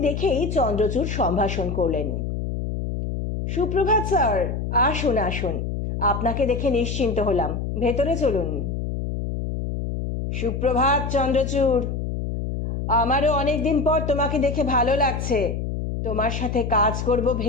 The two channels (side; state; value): left; noise; hum, 3 dB below the sound